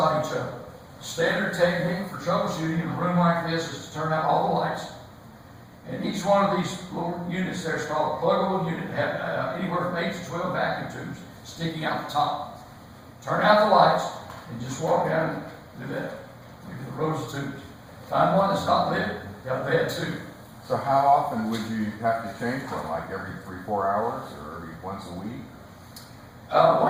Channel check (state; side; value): identical; both; correlation 1.00